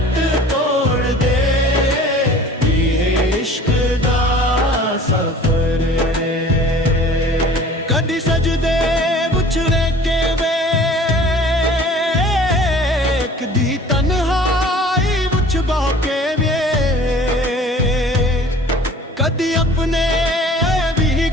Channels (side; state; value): both; normal; correlation 0.47